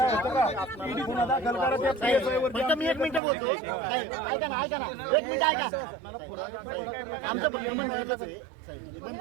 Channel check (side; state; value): left; drops out; at 3.2 s